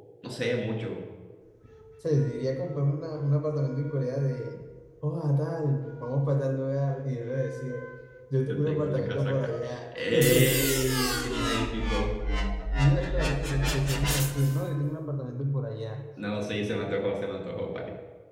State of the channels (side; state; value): both; identical; correlation 1.00